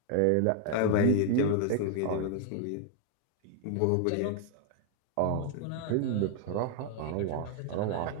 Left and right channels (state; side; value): different; both; correlation 0.00